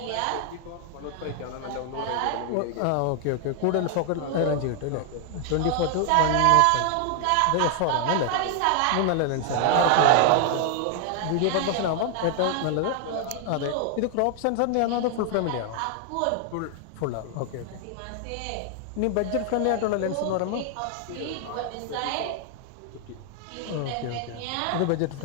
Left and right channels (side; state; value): both; different; correlation 0.00